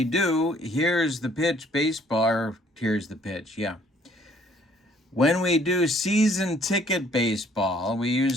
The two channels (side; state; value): both; normal; correlation 0.61